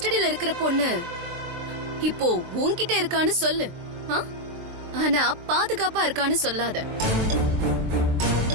இருக்கிற பொண்ணு இப்போ உன்கிட்ட இருக்கான்னு சொல்லு, ஆனா பாதுகாப்பா இருக்கான்னு சொல்லாத.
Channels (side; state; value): left; late; 23 ms